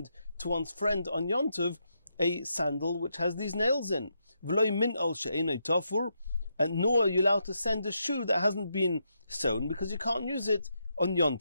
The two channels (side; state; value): both; inverted; correlation -0.81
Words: to one's friend on Yontiv a sandal which has these nails in. V'loi min al she'enoi tofur, and nor are you allowed to send a shoe that hasn't been sewn, because you can't use it on